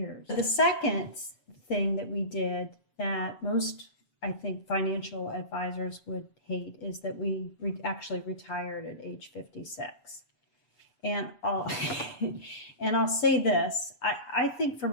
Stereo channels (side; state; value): right; late; 6.9 ms